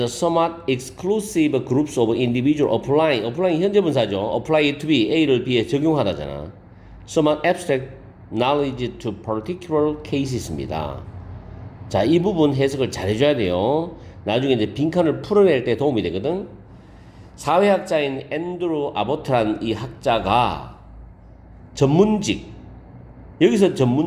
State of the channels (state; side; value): identical; both; correlation 1.00